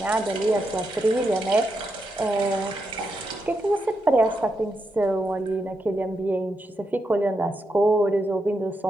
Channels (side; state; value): both; normal; correlation 0.84